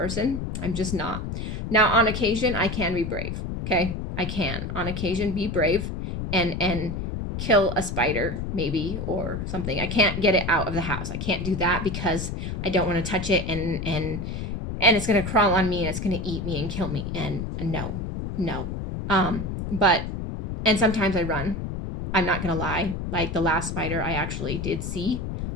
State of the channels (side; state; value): left; noise; rumble, 5 dB below the sound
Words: I'm just not. Now, on occasion, I can be brave. Okay, I can on occasion be brave and kill a spider maybe or something. I can't get it out of the house. I can't do that because I don't want to touch it and it's gonna crawl on me and it's gonna eat me and kill me. And no. But and sometimes I run. I'm not gonna lie. Like the last spider I actually did see,